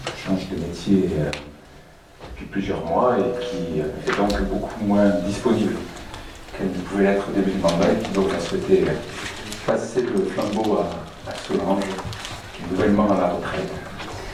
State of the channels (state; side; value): identical; both; correlation 1.00